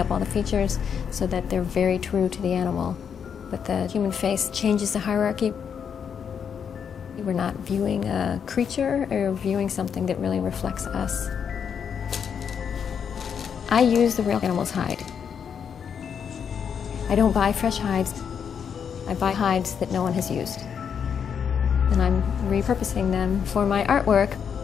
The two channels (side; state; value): right; quieter; 7.4 dB